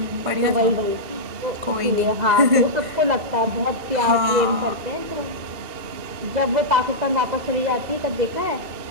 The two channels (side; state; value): left; late; 2.0 ms